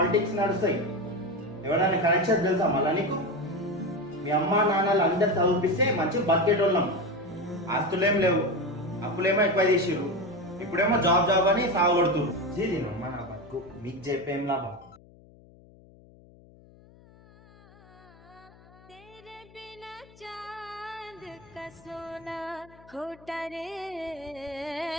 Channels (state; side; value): noise; left; hum, 25 dB below the sound